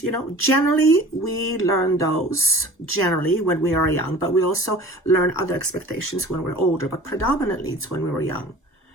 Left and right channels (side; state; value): both; normal; correlation 0.43